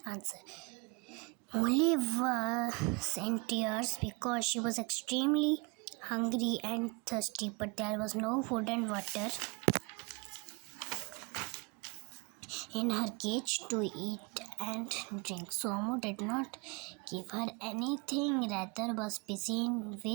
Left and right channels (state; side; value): quieter; left; 29.6 dB